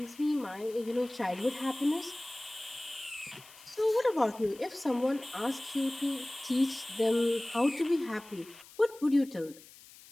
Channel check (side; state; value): left; noise; hiss, 21 dB below the sound